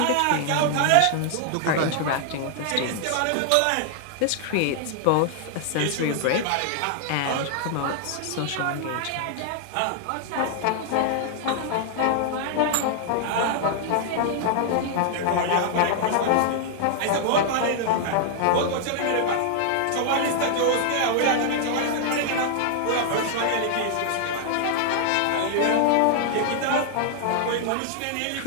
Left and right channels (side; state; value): both; different; correlation 0.00